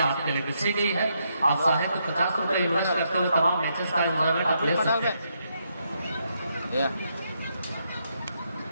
आपके लिए बिछी गई है। आप चाहे तो 50 रुपए इन्वेस्ट करते हुए तमाम मैचेस का एंजॉयमेंट आप ले सकते हैं।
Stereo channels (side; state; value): both; inverted; correlation -0.78